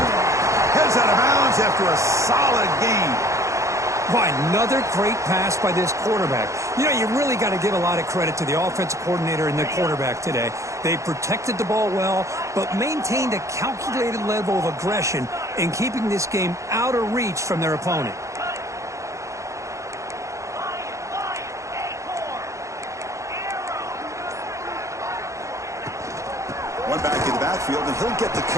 Heads out of bounds after a solid gain. Why, another great pass by this quarterback. You know, you really got to give a lot of credit to the offensive coordinator and the quarterback today. They protected the ball well, but maintained a calculated level of aggression in keeping this game out of reach from their opponent. One back in the backfield, and he'll get the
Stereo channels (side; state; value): left; late; 0.15 ms